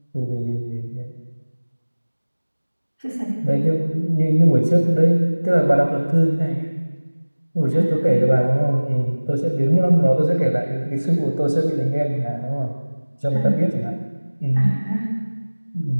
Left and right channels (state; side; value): inverted; both; correlation -1.00